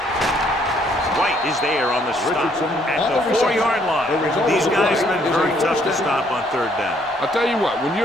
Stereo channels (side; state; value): both; normal; correlation 0.67